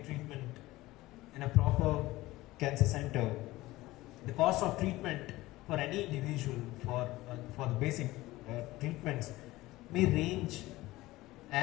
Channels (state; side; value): quieter; right; 18.3 dB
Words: treatment in a proper cancer center, the cost of treatment for any individual for the basic treatments may range